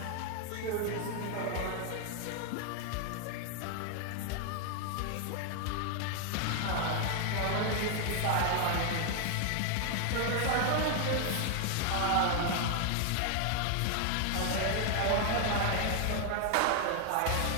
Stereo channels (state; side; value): different; both; correlation 0.00